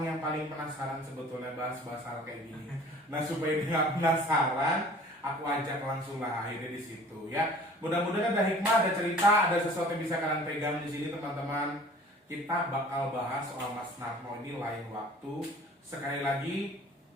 yang paling penasaran sebetulnya bahas-bahas hal kayak gini. Nah supaya dia nggak penasaran, aku ajak langsung lah akhirnya di situ ya. Mudah-mudahan ada hikmah, ada cerita, ada sesuatu yang bisa kalian pegang di sini teman-teman. Kita bakal bahas soal Mas Narno ini lain waktu. Sekali lagi,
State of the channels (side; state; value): both; normal; correlation 0.48